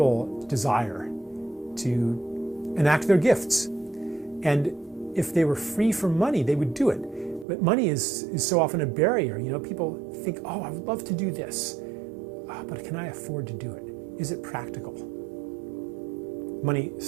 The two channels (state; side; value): drops out; left; at 7.5 s